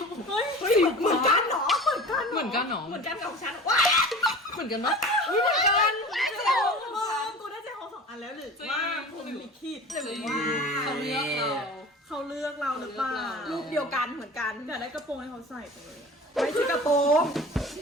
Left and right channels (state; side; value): normal; both; correlation 0.38